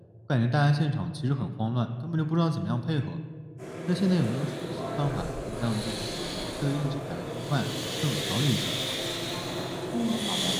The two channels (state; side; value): identical; both; correlation 1.00